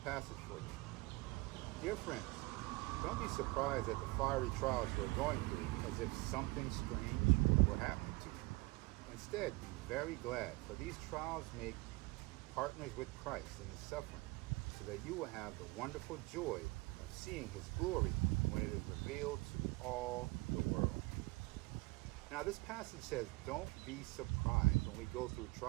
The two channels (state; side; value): quieter; left; 24.2 dB